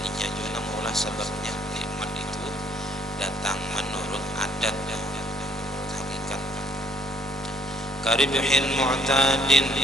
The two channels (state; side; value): normal; both; correlation 0.64